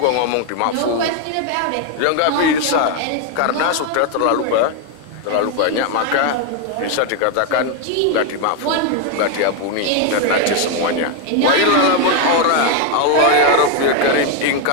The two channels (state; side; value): different; both; correlation 0.01